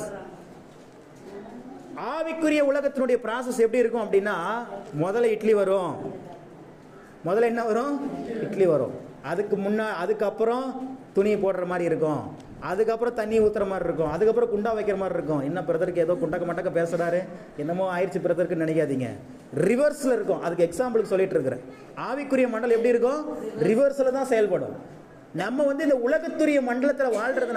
ஆவிக்குரிய உலகத்தினுடைய ப்ராசஸ் எப்படி இருக்கும் அப்படின்னா, முதல்ல இட்லி வரும். முதல்ல என்ன வரும்? இட்லி வரும். அதுக்கப்புறம் துணி போடுற மாதிரி இருக்கும். அதுக்கப்புறம் தண்ணி ஊற்றுற மாதிரி இருக்கும். அதுக்கப்புறம் குண்டா வைக்கிற மாதிரி இருக்கும். என்ன பிரதருக்கு ஏதோ குண்டக்க மட்டக்க பேசுகிறாரு, என்னமோ ஆயிடுச்சு பிரதருக்குன்னு நினைக்காதீங்க. ரிவர்ஸில் இருக்கும். அதுக்கு எக்ஸாம்பிளுக்கு சொல்லிட்டு இருக்கிறேன். ஆவிக்குரிய மண்டலம் எப்படி இருக்கும்? ரிவர்ஸில் தான் செயல்படும். நம்ம இந்த உலகத்துரிய மண்டலத்தில்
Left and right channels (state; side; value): identical; both; correlation 1.00